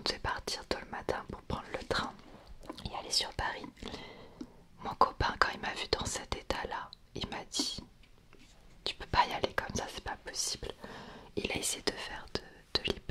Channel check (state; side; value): identical; both; correlation 1.00